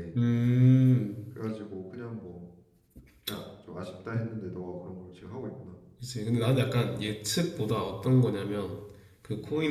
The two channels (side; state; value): both; identical; correlation 1.00